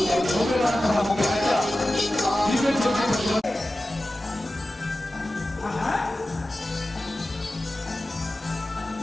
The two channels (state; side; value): normal; both; correlation 0.95